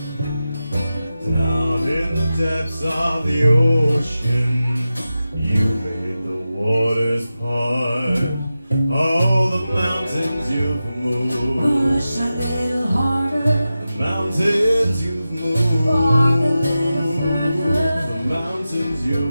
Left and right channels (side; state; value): both; inverted; correlation -0.93